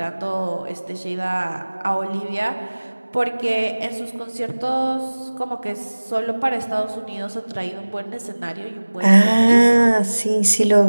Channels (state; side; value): inverted; both; correlation -1.00